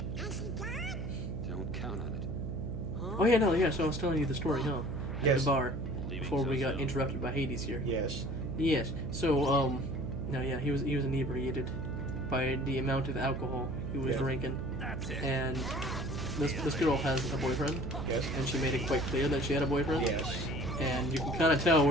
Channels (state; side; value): noise; right; hum, 6 dB below the sound